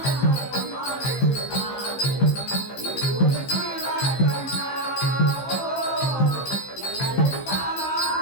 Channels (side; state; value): right; late; 15 ms